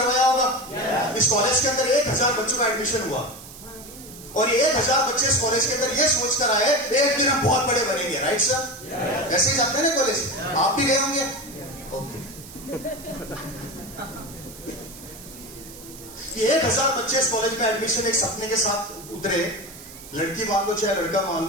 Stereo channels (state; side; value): noise; right; hiss, 17 dB below the sound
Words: होगा। इस कॉलेज के अंदर 1000 बच्चों का एडमिशन हुआ और ये 1000 बच्चे इस कॉलेज के अंदर ये सोच कर आए एक दिन हम बहुत बड़े बनेंगे। Right sir? ऐसे ही जाते हैं ना कॉलेज, आप भी गए होंगे। ओके, 1000 बच्चे इस कॉलेज में एडमिशन एक सपने के साथ उतरे। लड़की मान लो चाहे लड़का मान